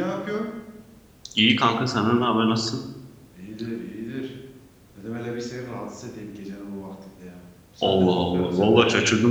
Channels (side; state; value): both; identical; correlation 1.00